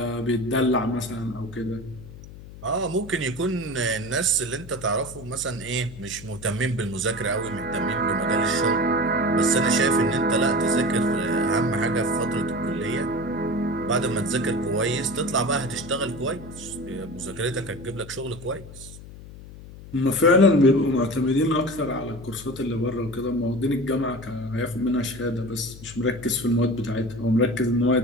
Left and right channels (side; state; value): left; noise; hum, 16 dB below the sound